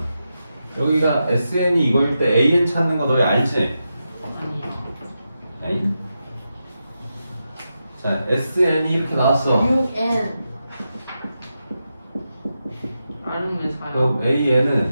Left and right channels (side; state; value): both; inverted; correlation -0.88